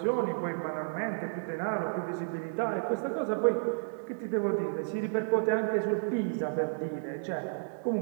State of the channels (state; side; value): silent; left; digital silence